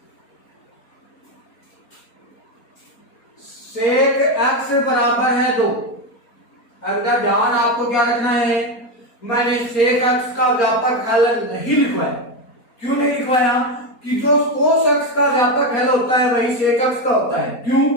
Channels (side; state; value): right; late; 4.3 ms